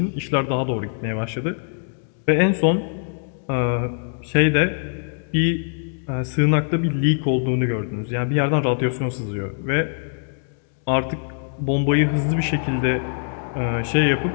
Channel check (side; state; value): right; silent; digital silence